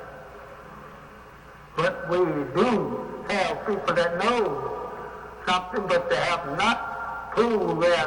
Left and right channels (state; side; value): identical; both; correlation 1.00